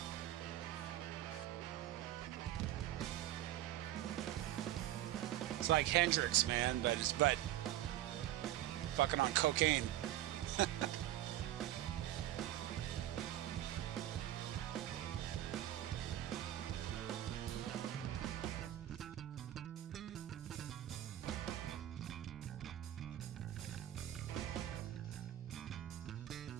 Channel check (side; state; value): left; quieter; 13.3 dB